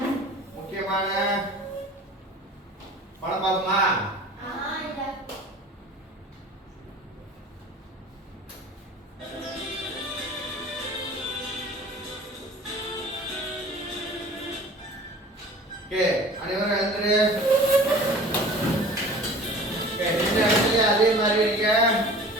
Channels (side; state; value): both; normal; correlation 0.43